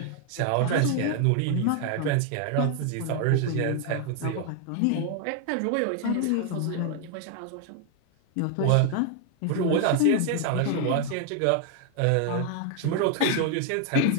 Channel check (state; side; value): different; both; correlation 0.00